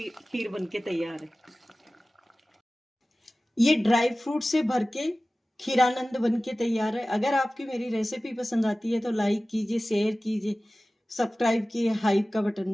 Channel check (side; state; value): both; normal; correlation 0.97